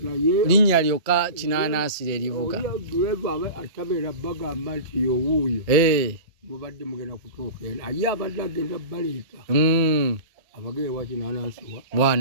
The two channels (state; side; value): late; left; 1.8 ms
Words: linnya lyokka kinanasi lyerivuga. Atabera bagamba nti yowuuyo mubadde mugenda kutuuka eno aye abadde agenda baleeta abagere wa kinanasi